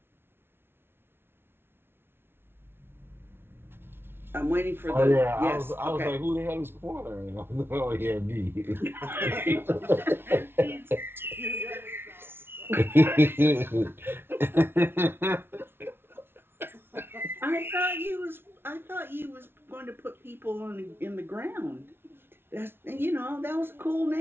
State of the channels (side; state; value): left; late; 0.11 ms